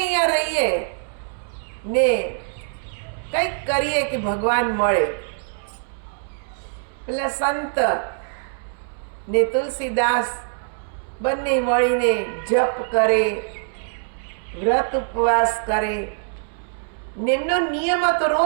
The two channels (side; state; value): left; silent; 63 dB below the other